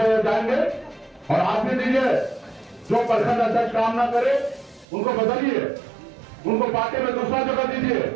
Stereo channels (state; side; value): drops out; left; at 4.9 s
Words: जाएंगे और आप भी दीजिए। जो प्रखंड अध्यक्ष काम ना करे उनको बदलिए, उनको पार्टी में दूसरा जगह दीजिए।